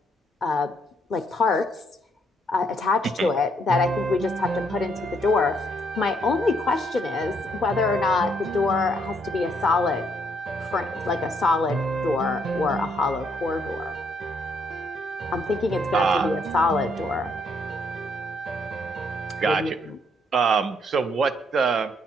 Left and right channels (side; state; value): both; normal; correlation 0.71